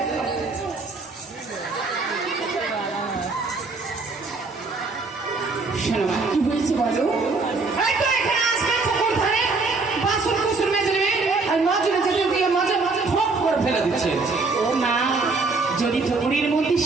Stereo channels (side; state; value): left; quieter; 3.9 dB